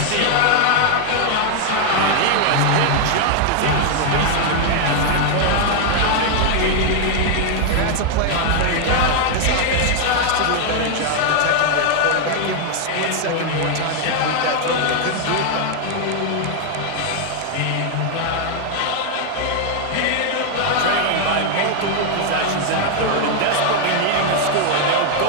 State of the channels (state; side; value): different; both; correlation 0.00